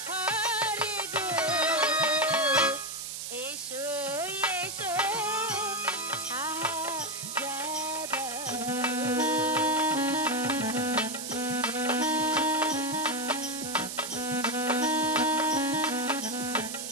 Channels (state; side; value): noise; right; hiss, 6 dB below the sound